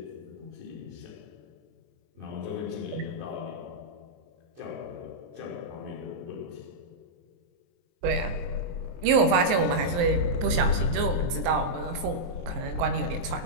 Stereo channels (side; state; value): left; late; 23 ms